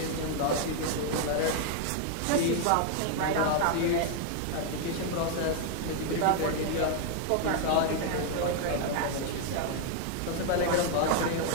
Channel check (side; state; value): both; different; correlation 0.00